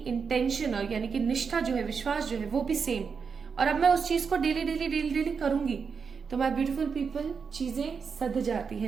और यानी कि निष्ठा जो है, विश्वास जो है वो भी सेम। और अब मैं उस चीज को डेली करूंगी तो माय ब्यूटीफुल पीपल चीजें सध जाती हैं,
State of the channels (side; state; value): left; quieter; 5.8 dB